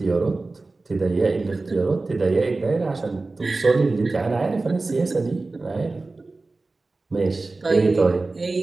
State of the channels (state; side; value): quieter; left; 3.4 dB